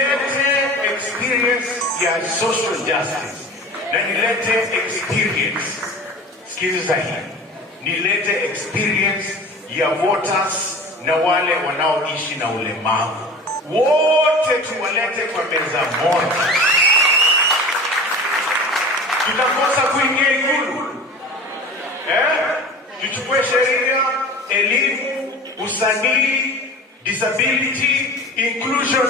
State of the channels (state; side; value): normal; both; correlation 0.37